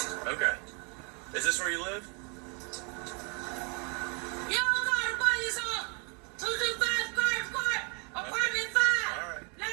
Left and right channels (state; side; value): quieter; left; 34.4 dB